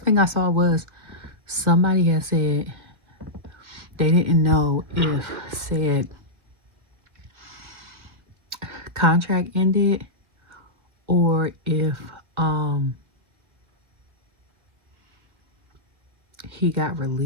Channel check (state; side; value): late; left; 1.8 ms